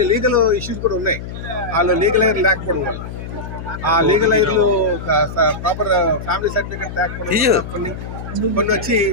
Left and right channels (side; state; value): left; noise; hum, 9 dB below the sound